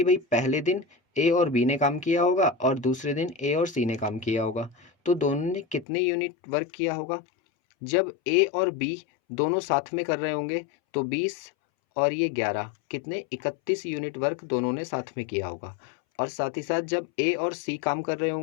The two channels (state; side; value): drops out; right; at 5.9 s